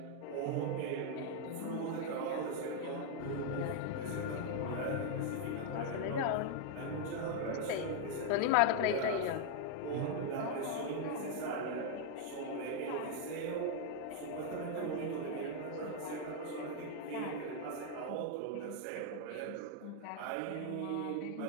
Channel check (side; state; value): both; different; correlation 0.00